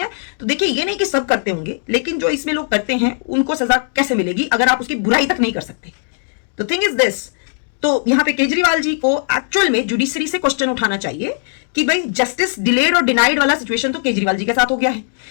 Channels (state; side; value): silent; right; digital silence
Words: तो देखिए, ये नहीं कि सब करते होंगे, लेकिन जो इसमें लोग करते हैं उनको सजा कैसे मिलेगी अगर आप उसकी बुराई तक नहीं कर सकते? तो थिंग इज दिस, तो यहाँ पे केजरीवाल जी को एक्चुअल में जुडिशरी से क्वेश्चन उठाना चाहिए कि भाई जस्टिस डिलेड और डिनाइड वाला सिचुएशन तो केजरीवाल जी के साथ हो गया है